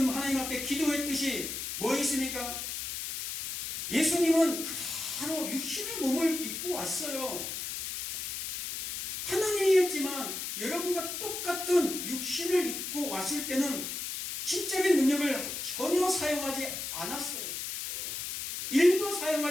하나님 앞에 기도했듯이 뭐 있습니까? 예수님은 그대로 육신의 몸을 입고 왔어요. 하나님이었지만 여러분과 똑같은 육신을 입고 왔을 때는 신적인 능력을 전혀 사용하지 않았어요. 일도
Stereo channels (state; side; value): noise; left; hiss, 5 dB below the sound